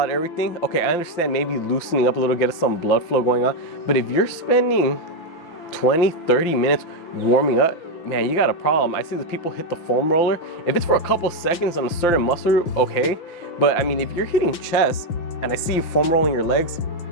everything. Okay, I understand maybe loosening up a little, get some blood flow going on, but if you're spending 20, 30 minutes warming up, man, you got a problem. I see the people hit the foam roller. If it's for a couple seconds on a certain muscle, okay. But I mean, if you're hitting chest and I see you foam rolling your legs,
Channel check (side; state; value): right; late; 5.9 ms